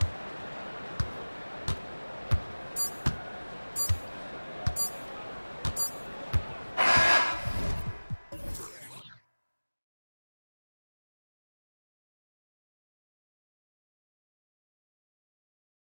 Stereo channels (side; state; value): both; inverted; correlation -1.00